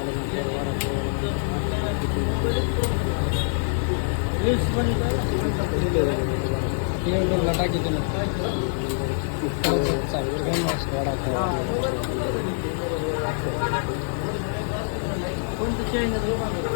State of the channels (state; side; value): silent; right; digital silence